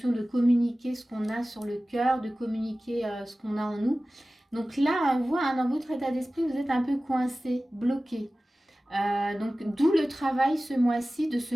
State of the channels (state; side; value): normal; both; correlation 0.97